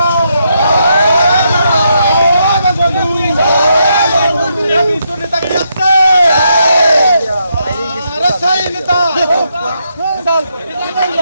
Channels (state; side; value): inverted; both; correlation -0.79